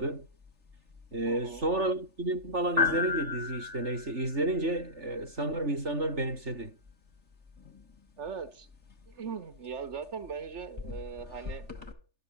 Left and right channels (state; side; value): late; left; 3.4 ms